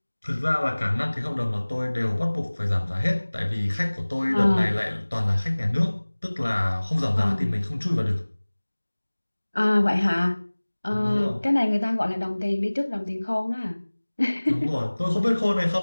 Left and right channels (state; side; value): inverted; both; correlation -1.00